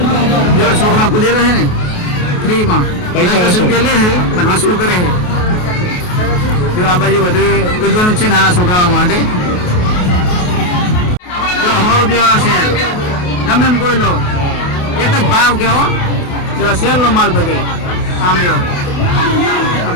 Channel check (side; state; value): right; late; 28 ms